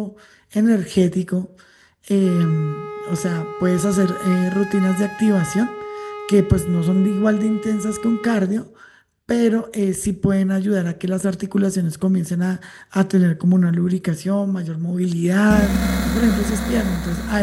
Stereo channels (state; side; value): identical; both; correlation 1.00